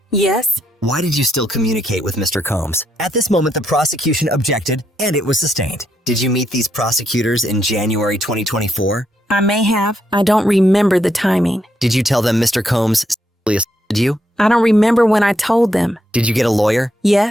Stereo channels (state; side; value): normal; both; correlation 0.78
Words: Yes. Why did you still communicate with Mr. Combs? At this moment, the prosecution objected, and it was sustained. Did you meet these prosecutors in January 2024? I may have. I don't remember the timing. Did you tell them Mr. Combs sexually assaulted you? I don't remember when I told them. Did you get a lawyer?